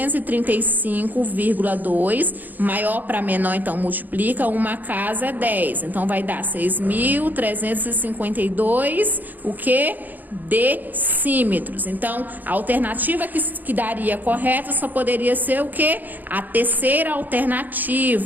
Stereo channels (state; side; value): late; left; 0.085 ms